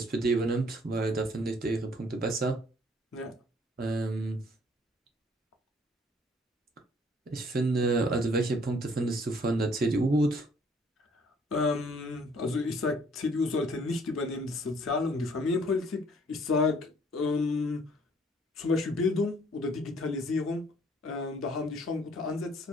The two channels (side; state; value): both; normal; correlation 0.60